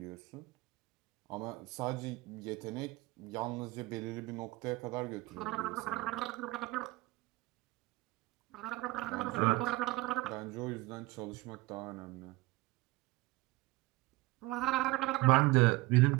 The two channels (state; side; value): quieter; left; 20.9 dB